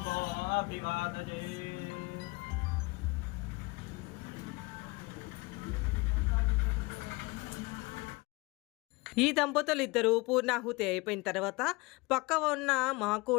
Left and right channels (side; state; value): right; quieter; 24.9 dB